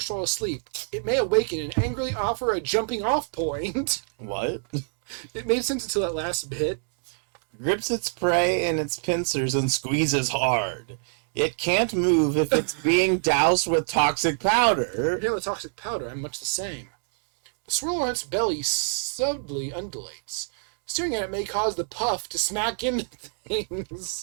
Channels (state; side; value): silent; left; digital silence